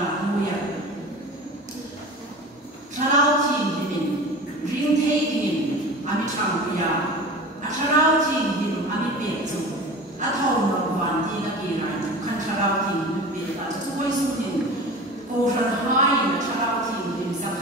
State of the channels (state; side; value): normal; both; correlation 0.35